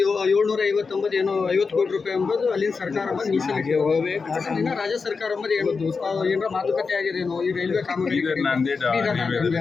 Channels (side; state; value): right; quieter; 4.9 dB